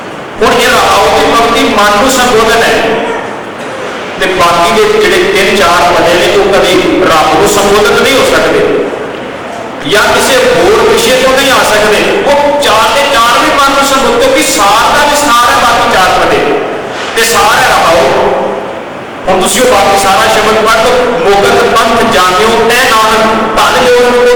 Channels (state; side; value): identical; both; correlation 1.00